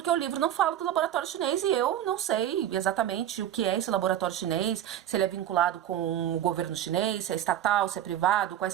o livro não fala do laboratório chinês e eu não sei exatamente o que é esse laboratório chinês, se ele é vinculado com o governo chinês, se é estatal, se é privado, quais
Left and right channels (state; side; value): quieter; left; 11.3 dB